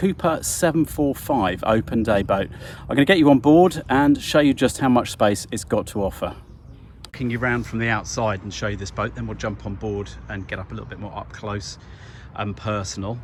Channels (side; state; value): both; identical; correlation 1.00